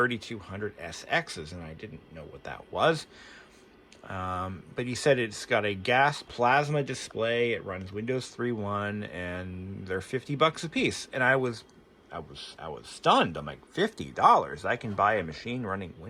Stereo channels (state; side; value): identical; both; correlation 1.00